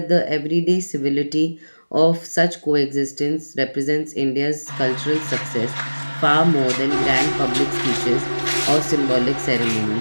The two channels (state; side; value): inverted; both; correlation -1.00